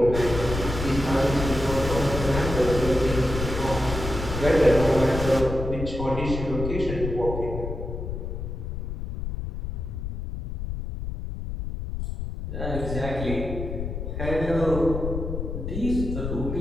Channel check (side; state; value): left; noise; rumble, 5 dB below the sound